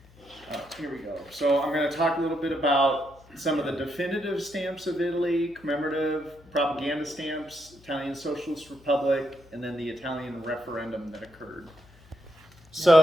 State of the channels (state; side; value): noise; left; hum, 26 dB below the sound